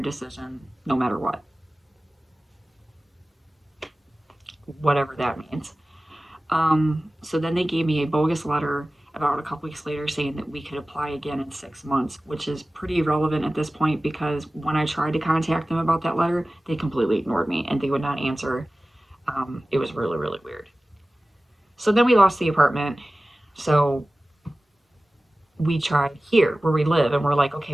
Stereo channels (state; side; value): normal; both; correlation 0.97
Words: no matter what. Whatever that means. So then they gave me a bogus letter about a couple weeks later saying that we could apply again in 6 months, which is pretty irrelevant at this point because when I tried to contact them about that letter, they completely ignored me and they would not answer. It was really, really weird. So then we lost the apartment. So we tried here where we live and we're like, okay,